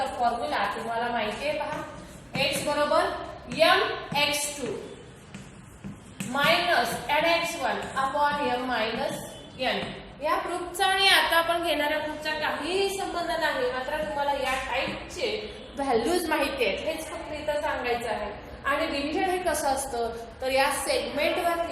फॉर्म्युला तुम्हाला माहिती आहे. पहा x बरोबर mx2 minus nx1 upon m minus n. या प्रूफचा आणि आता आपण घेणाऱ्या प्रूफचा काहीही संबंध नाही, मात्र तुम्हाला या टाइपचे व्हॅल्यूज माहिती आहेत हेच फक्त इथं सांगायचं आहे. आणि डिव्हिजन हे कसं असतं, तर या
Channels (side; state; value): both; identical; correlation 1.00